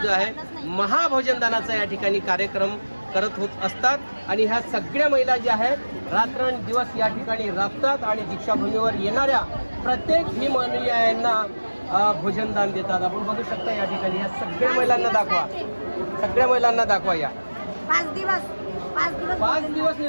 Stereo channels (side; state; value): both; inverted; correlation -1.00